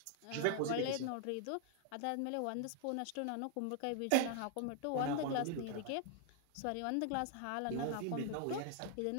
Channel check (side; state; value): both; different; correlation 0.00